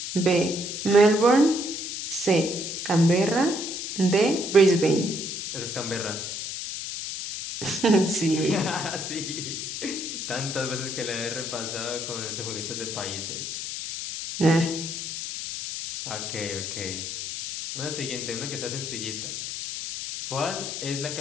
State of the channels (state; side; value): noise; left; hiss, 5 dB below the sound